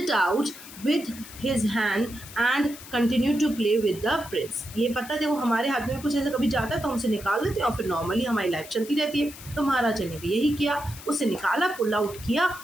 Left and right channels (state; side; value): noise; left; hiss, 16 dB below the sound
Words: out with his hand and continued to play with the prince। ये पता देखो, हमारे हाथ में कुछ ऐसा कभी जाता है तो हम उसे निकाल देते हैं और फिर नॉर्मली हमारी लाइफ चलती रहती है। तो महाराजा ने भी यही किया, उसे निकाला, पुल आउट किया